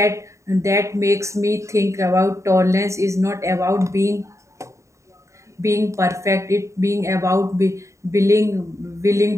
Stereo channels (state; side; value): late; left; 0.14 ms